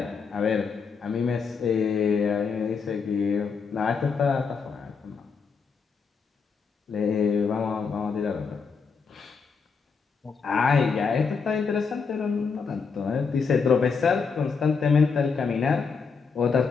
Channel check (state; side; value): quieter; right; 5.4 dB